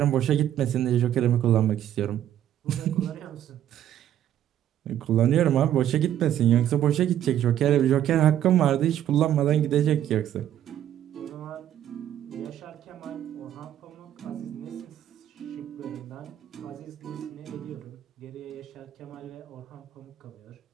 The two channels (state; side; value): quieter; left; 11.1 dB